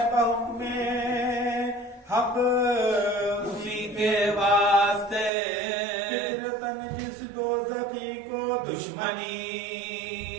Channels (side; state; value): left; drops out; at 5.3 s